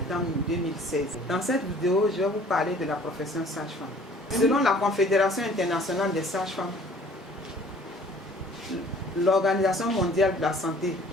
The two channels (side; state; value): both; normal; correlation 0.52